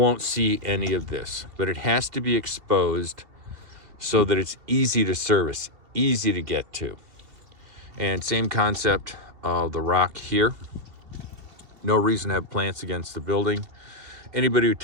see any of this, but it has to be exposed so that it's easy to service, easy to get to. And same concept of the rock here. No reason to have plants against the building. Anybody who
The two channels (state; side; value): late; left; 2.7 ms